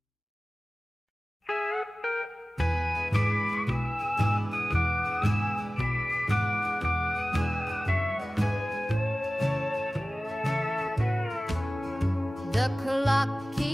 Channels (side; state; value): both; normal; correlation 0.97